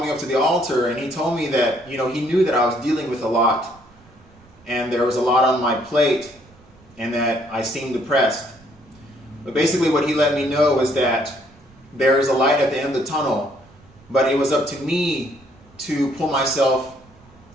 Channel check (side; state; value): right; noise; rumble, 27 dB below the sound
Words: me up to the altar, and he told me that, he knew that I was dealing with a lot, and there was a lot on my plate, and that I seemed depressed. But basically what he let me know was that there is a light at the end of the tunnel, but it was up to me to pull myself